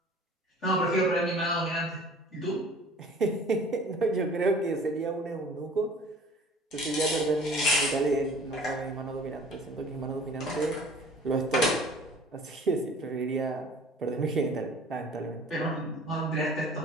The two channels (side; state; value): both; normal; correlation 0.48